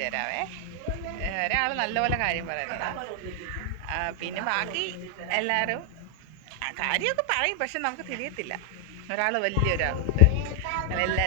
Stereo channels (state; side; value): different; both; correlation 0.00